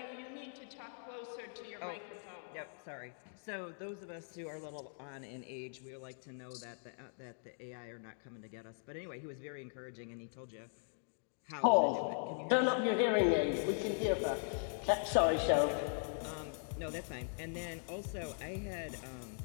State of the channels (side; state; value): right; silent; digital silence